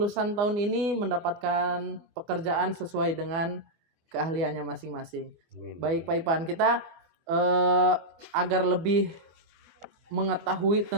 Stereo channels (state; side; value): late; left; 24 ms